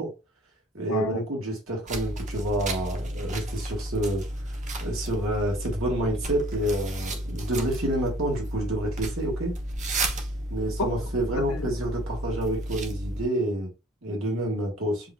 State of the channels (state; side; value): normal; both; correlation 0.53